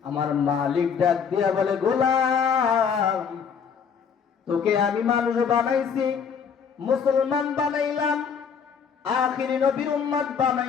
আমার মালিক ডাক দিয়া বলে, গোলাম তোকে আমি মানুষ বানাইছি, মুসলমান বানাইলাম, আখিরি নবীর উম্মত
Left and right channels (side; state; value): right; quieter; 6.7 dB